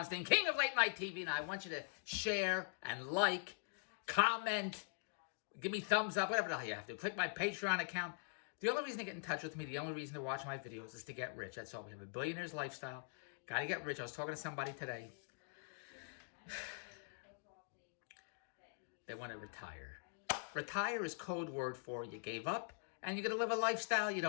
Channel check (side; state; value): right; silent; digital silence